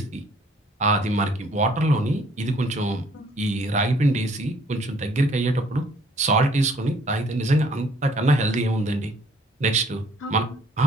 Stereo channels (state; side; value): normal; both; correlation 0.59